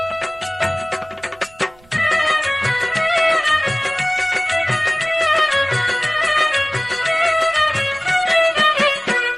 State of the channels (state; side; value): noise; right; rumble, 28 dB below the sound